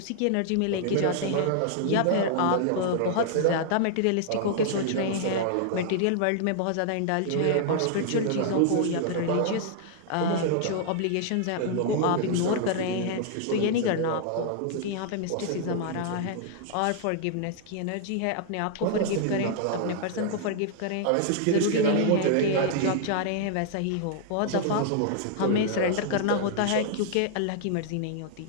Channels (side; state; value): both; different; correlation -0.01